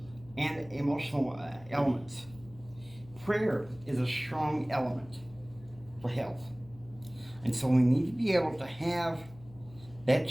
and emotional elements? Prayer is a strong element for health. And so we need to be able to have that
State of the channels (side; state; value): left; noise; hum, 20 dB below the sound